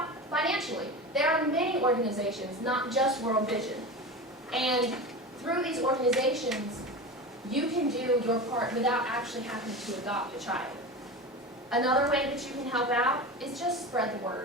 Financially. There are many organizations, not just World Vision. And through these organizations, you can do your part without actually having to adopt a child. Another way that you can help out is just spread the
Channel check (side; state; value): both; normal; correlation 0.28